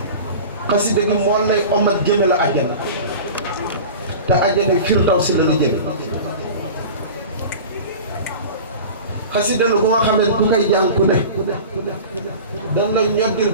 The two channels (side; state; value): both; inverted; correlation -0.35